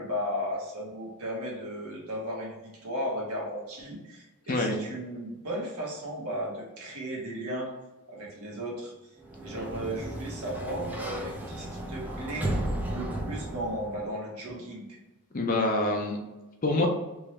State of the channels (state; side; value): normal; both; correlation 0.19